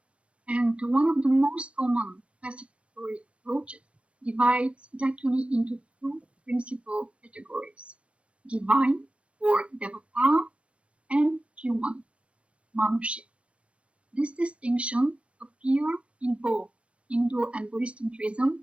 And one of the most common classificatory approaches divides Dakini into two principal categories: divine, or devata, and human, manushya. This distinction appears in both Hindu and Buddhist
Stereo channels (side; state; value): left; late; 0.061 ms